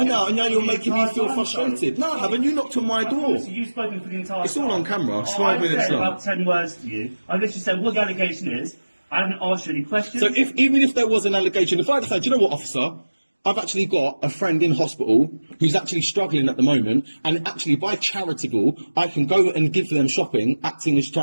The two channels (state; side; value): inverted; both; correlation -1.00